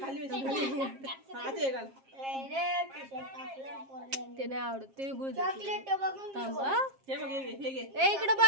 ते नाही आवडत, ते चॉकलेट बघून थांबा. ए इकडे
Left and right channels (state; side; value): late; left; 7.5 ms